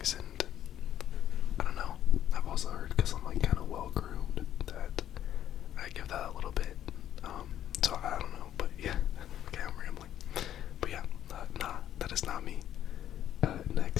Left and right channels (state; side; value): quieter; right; 11.1 dB